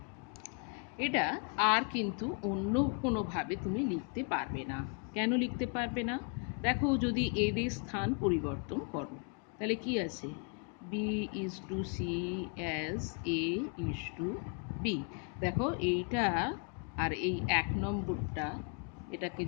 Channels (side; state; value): right; quieter; 39.5 dB